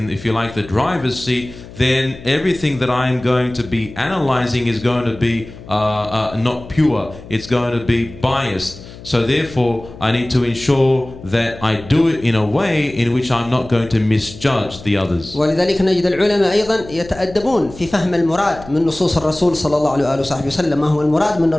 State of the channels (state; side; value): noise; left; hum, 17 dB below the sound